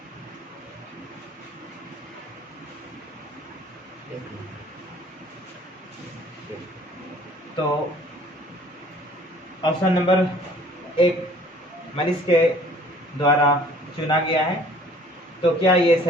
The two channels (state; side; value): normal; both; correlation 0.54